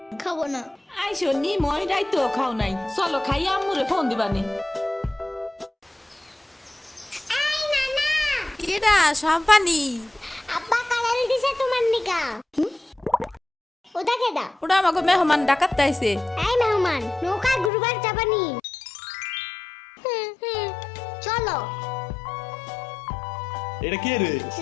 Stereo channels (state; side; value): drops out; right; at 17.7 s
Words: খাবো না। আইসো নি, মই রাইতো খাও নাই। চলো খাইয়া আম্মুরে ফোন দিবানি। এই নানা, কেডা সম্পানি? আব্বা কালার দিছে তোমার নিকা। ওটা কেডা? ওটা আমাকে মেহমান ডাকাত আইছে। এই মেহমান, নৌকা ঘুরবার যাবানি? চলো। এটা কে রে?